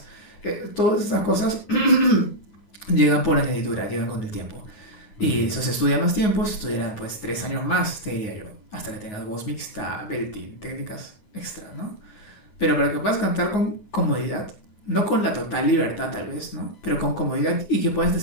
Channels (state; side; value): late; right; 9.6 ms